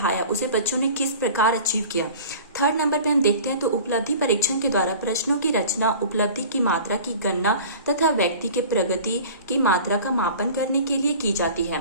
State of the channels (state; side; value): inverted; both; correlation -0.41